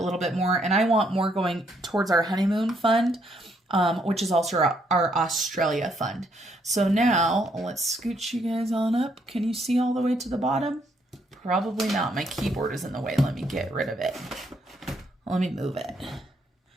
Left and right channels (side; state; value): both; normal; correlation 0.72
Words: little bit more. And I want more going towards our honeymoon fund, which is also our Australia fund. So now let's scooch you guys on up. Can you see all the way to the bottom? Probably not. My keyboard is in the way. Let me get rid of it. Let me move it.